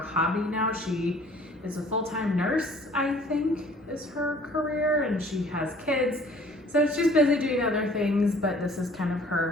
now. She is a full-time nurse, I think is her career, and she has kids, so she's busy doing other things, but this is kind of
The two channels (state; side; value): normal; both; correlation 0.54